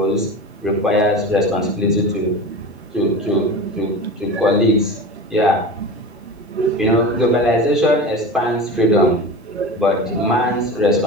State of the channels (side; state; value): both; normal; correlation 0.31